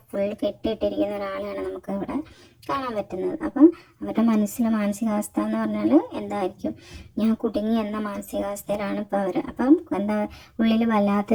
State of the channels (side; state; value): both; identical; correlation 1.00